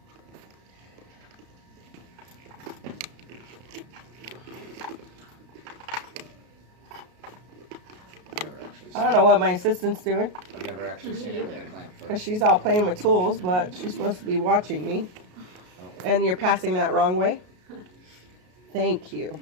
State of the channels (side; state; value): left; late; 33 ms